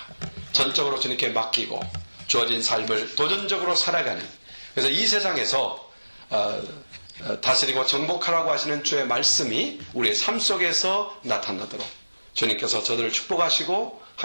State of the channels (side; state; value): both; inverted; correlation -1.00